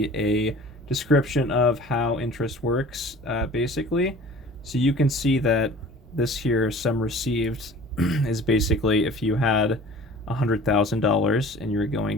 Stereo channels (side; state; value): both; normal; correlation 0.45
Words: a description of how interest works, basically. So you can see that this here, sum received, is basically if you had $100,000 and you're going